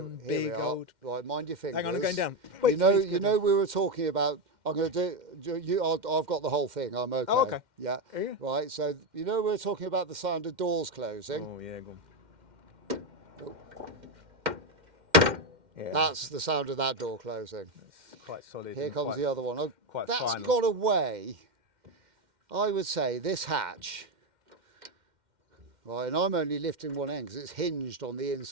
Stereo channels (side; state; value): left; late; 2.1 ms